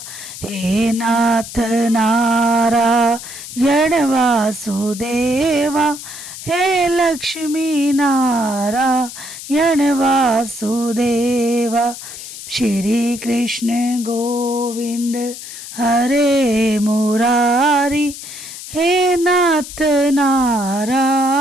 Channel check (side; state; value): left; noise; hiss, 12 dB below the sound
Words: हे नाथ नारायण वासुदेवा, हे लक्ष्मी नारायण वासुदेवा। श्री कृष्ण गोविंद हरे मुरारी, हे नाथ